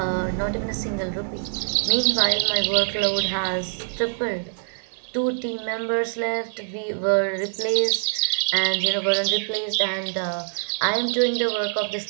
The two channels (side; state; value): left; silent; digital silence